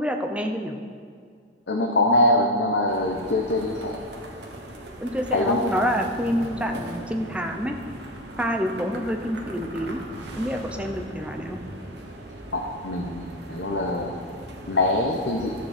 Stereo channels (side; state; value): both; normal; correlation 0.11